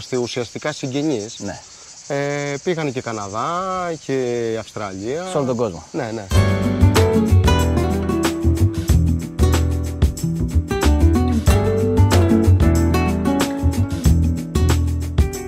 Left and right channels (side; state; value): both; identical; correlation 1.00